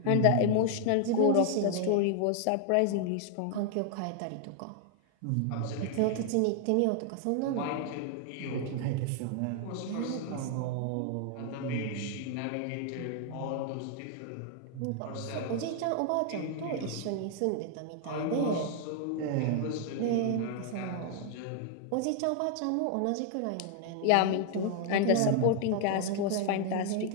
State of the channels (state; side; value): different; both; correlation 0.00